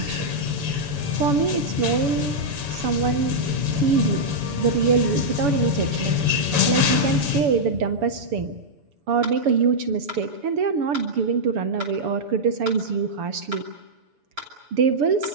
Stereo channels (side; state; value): left; late; 7.0 ms